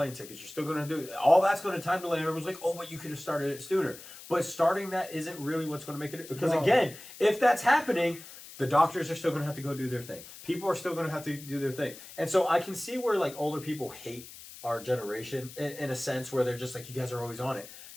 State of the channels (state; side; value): noise; left; hiss, 16 dB below the sound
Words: tickets. You're still gonna do all that's going to time delay. And everyone's like, oh, but you could have started it sooner. But starting that isn't really what's going to make it because No. again, if that's happening, the doctors are still going to have to go do their thing. People are still going to have to do their thing. And so I can see where like older people hate our generation in a sense where they're just like, you guys are always on it.